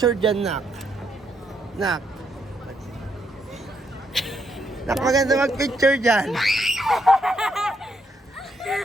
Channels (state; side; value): normal; both; correlation 0.76